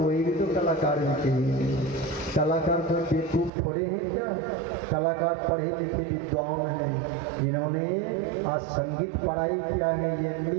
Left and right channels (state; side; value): drops out; left; at 3.5 s